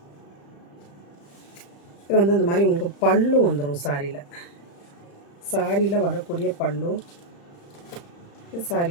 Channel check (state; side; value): late; right; 35 ms